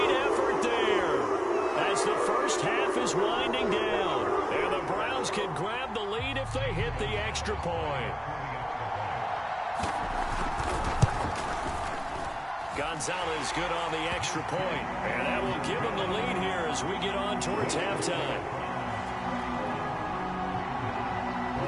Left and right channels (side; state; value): both; identical; correlation 1.00